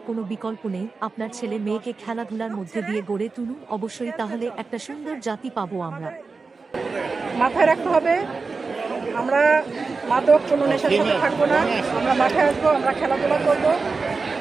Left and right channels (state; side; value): quieter; left; 4.3 dB